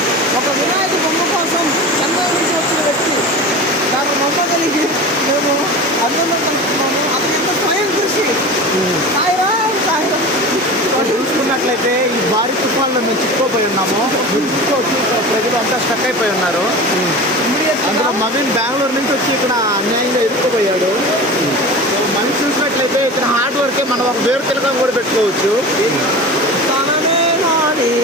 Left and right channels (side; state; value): both; normal; correlation 0.32